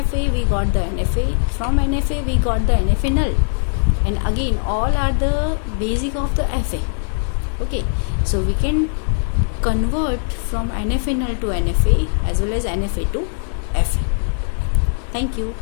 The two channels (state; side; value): silent; right; digital silence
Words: we got the NFA, from NFA we got the NFA null, and again all are the basic of the FA. Okay, so we can convert from NFA null to NFA as well as NFA to FA. Thank you.